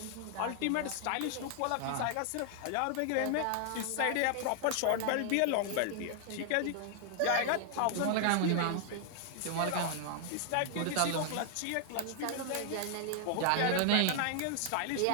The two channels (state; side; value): different; both; correlation 0.00